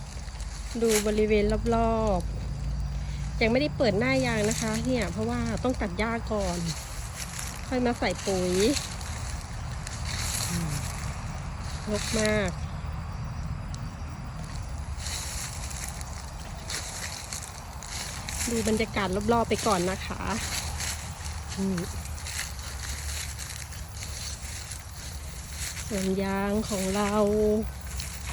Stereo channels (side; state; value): both; identical; correlation 1.00